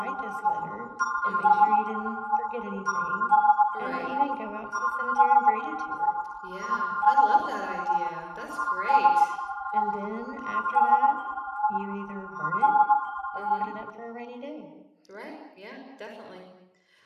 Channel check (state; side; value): identical; both; correlation 1.00